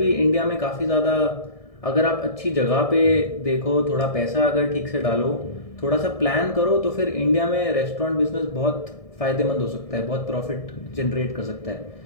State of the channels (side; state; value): right; late; 1.6 ms